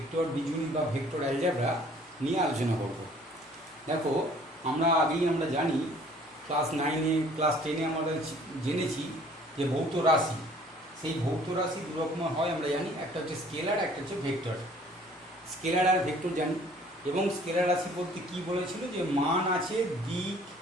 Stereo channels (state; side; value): normal; both; correlation 0.55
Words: বীজগণিত বা ভেক্টর অ্যালজেব্রা নিয়ে আলোচনা করব। দেখো, আমরা জানি ক্লাস 9-এ ক্লাস 10-এ আমরা জেনেছি যে ভৌত রাশি, সেই ভৌত রাশি দু রকমের হয় আমরা জানি, একটা হচ্ছে স্কেলার, একটা হচ্ছে ভেক্টর। স্কেলার আর ভেক্টর জানি, এবং স্কেলার রাশি বলতে কী বলেছিল যে মান আছে, দিক